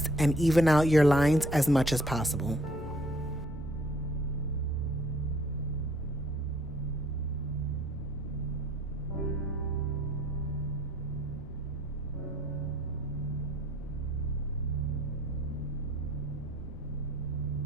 and even out your lines as much as possible.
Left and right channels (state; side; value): noise; left; rumble, 12 dB below the sound